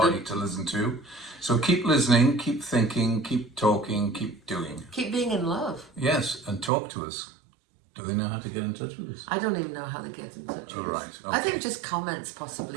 to listen to. So keep listening, keep thinking, keep talking, keep doing. Keep being in love. Yes, and talk to us. Do they know how to get in touch with us? I don't even know how they get in touch with All us. right, I okay. think just comments possibly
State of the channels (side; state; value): left; drops out; at 6.7 s